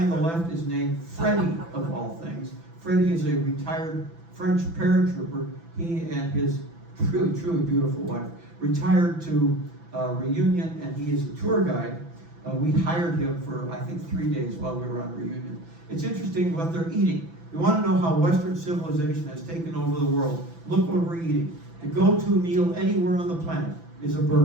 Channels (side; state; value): left; late; 6.0 ms